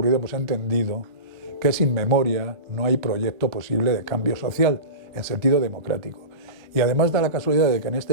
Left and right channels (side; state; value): left; late; 1.3 ms